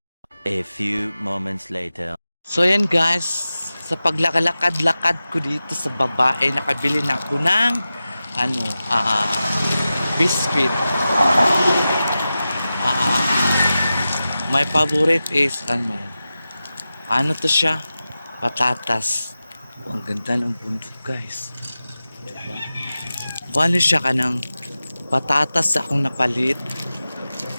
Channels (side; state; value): both; inverted; correlation -0.94